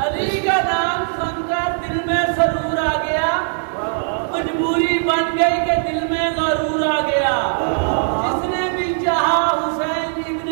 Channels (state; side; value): silent; left; digital silence